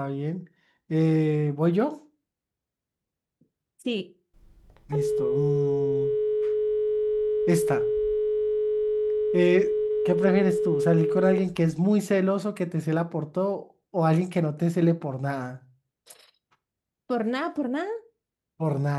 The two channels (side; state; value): both; identical; correlation 1.00